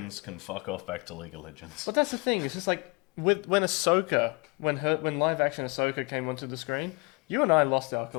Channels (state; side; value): quieter; right; 29.1 dB